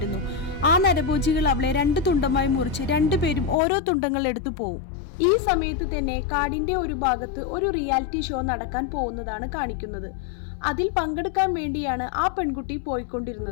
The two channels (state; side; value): drops out; right; at 3.6 s